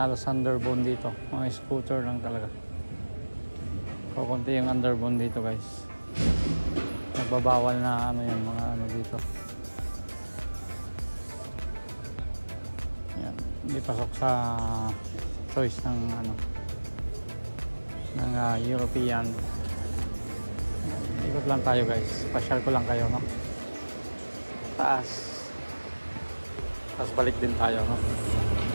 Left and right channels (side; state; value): both; inverted; correlation -1.00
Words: halos underbone dito. Mga scooter lang talaga. Kukunti yung underbone dito guys. Nagbabawal na ano yan, mga ano dito. Yan, hindi pasok sa choice ng ano, ng European. Ikot lang tayo guys. Pasyal ko lang kayo, no? Taas. Tapos balik din tayo, no?